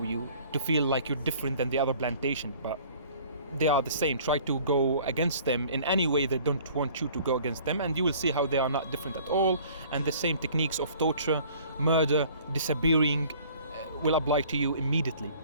to feel like you're different than the other plantation, but they are the same. Try to go against them in any way they don't want you to go against them, and you will see how they are not different at all. And the same techniques of torture, murder, disappearing will apply to you immediately.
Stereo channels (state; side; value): inverted; both; correlation -0.52